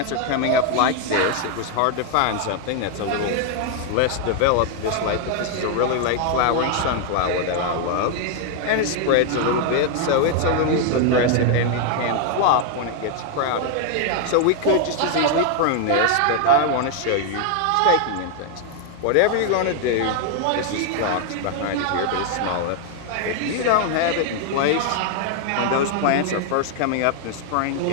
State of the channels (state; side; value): different; both; correlation 0.00